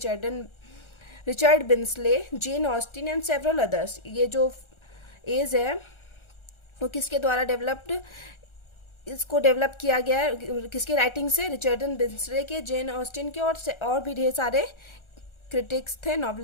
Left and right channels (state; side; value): late; right; 1.4 ms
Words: Richard Brinsley, Jane Austen and several others. ये जो एज है वो किसके द्वारा इसको डेवलप किया गया है, किसके राइटिंग से? रिचर्डन बिन्सले के, जेन ऑस्टिन के और भी ढेर सारे क्रिटिक्स थे,